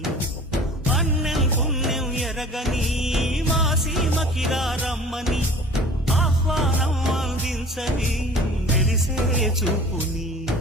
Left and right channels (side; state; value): both; normal; correlation 0.45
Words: అన్నం పుణ్యం ఎరగని మా సీమకిరా రమ్మని ఆహ్వానం అందించని మెరిసే చూపుని